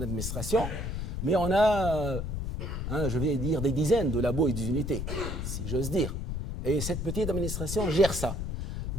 administration, mais on a, je vais dire, des dizaines de labos et d'unités, si j'ose dire. Et cette petite administration gère ça.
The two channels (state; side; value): noise; left; rumble, 3 dB below the sound